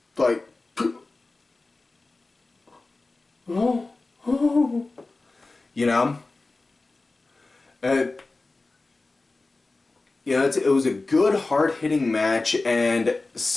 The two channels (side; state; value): right; quieter; 3.4 dB